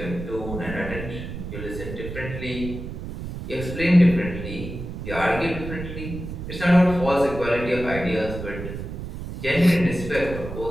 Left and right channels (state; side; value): noise; right; rumble, 8 dB below the sound